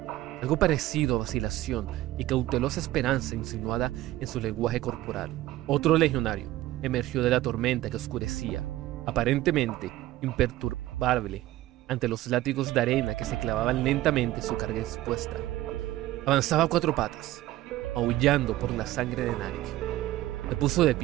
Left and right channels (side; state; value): left; quieter; 15.9 dB